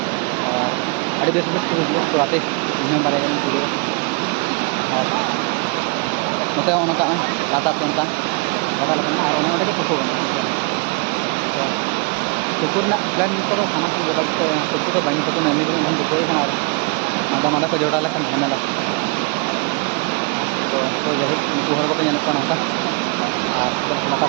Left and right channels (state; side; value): quieter; left; 31.2 dB